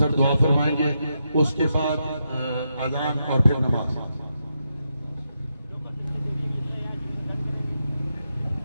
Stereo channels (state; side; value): inverted; both; correlation -0.84